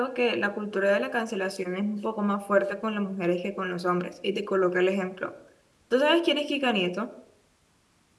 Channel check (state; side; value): identical; both; correlation 1.00